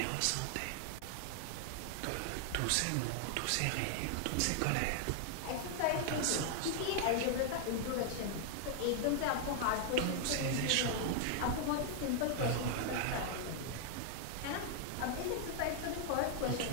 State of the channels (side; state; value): both; different; correlation 0.00